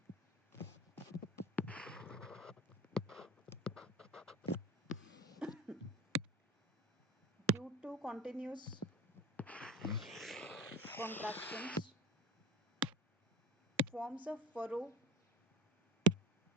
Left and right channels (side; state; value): both; normal; correlation 0.33